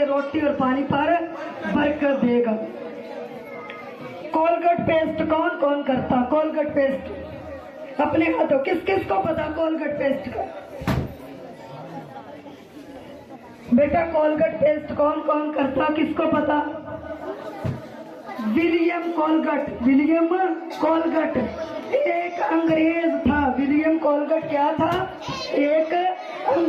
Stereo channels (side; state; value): both; identical; correlation 1.00